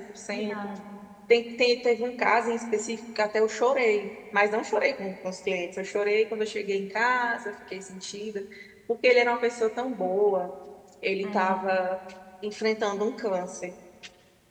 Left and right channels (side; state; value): both; identical; correlation 1.00